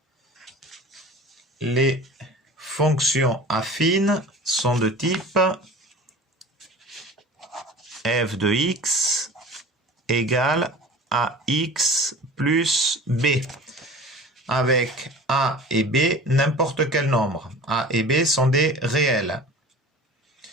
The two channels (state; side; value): normal; both; correlation 0.40